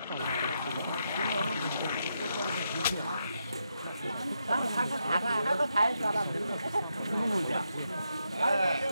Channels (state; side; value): inverted; both; correlation -0.82